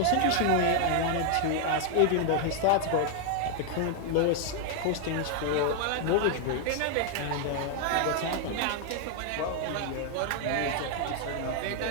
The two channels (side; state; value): both; different; correlation 0.00